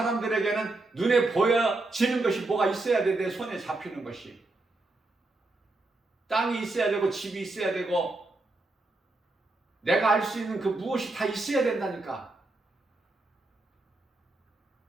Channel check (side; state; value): left; quieter; 3.0 dB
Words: 눈에 보여지는 것이 뭐가 있어야 돼. 내 손에 잡히는 것이. 땅이 있어야 되고 집이 있어야 되고 내가 알 수 있는 그 무엇이 다 있어야 된다니까.